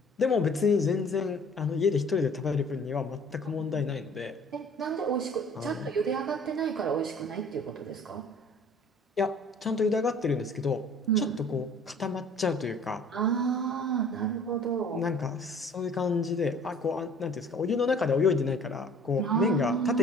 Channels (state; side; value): normal; both; correlation 0.51